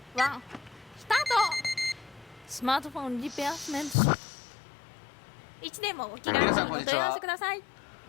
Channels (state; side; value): drops out; right; at 4.0 s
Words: 1、スタート。スマートフォンリペアスメント。いつでもお気軽にお問い合わせください。